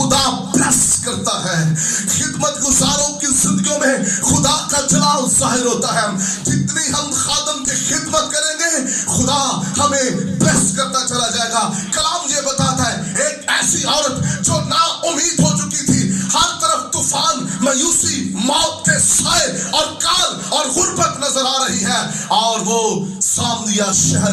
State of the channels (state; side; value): identical; both; correlation 1.00